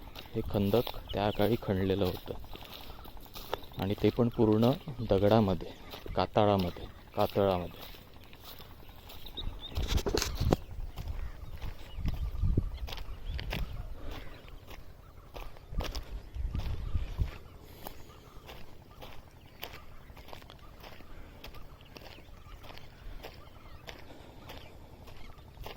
हे खंदक त्या काळी खणलेलं होतं, आणि ते पण पूर्ण दगडामध्ये, कातळामध्ये.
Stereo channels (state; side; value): identical; both; correlation 1.00